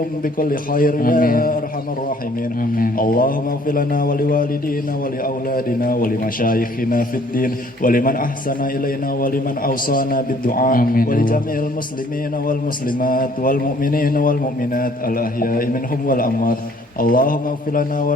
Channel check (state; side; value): normal; both; correlation 0.59